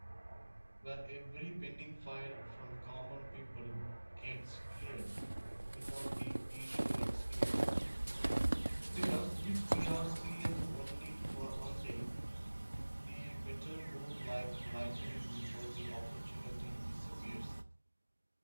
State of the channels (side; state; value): both; inverted; correlation -1.00